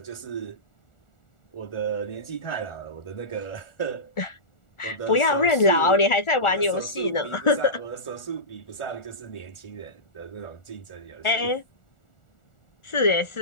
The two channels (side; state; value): right; late; 1.4 ms